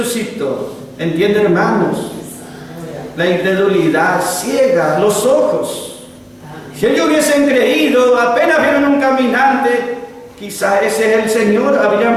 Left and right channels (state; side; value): identical; both; correlation 1.00